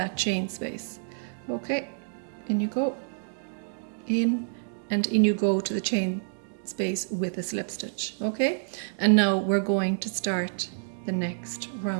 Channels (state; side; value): silent; left; digital silence